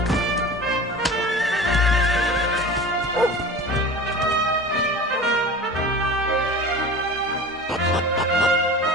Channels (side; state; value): both; normal; correlation 0.36